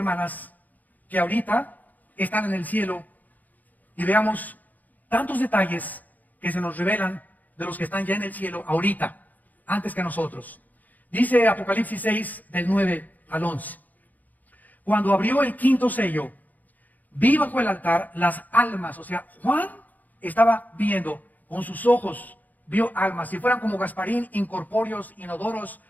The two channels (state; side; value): late; right; 0.081 ms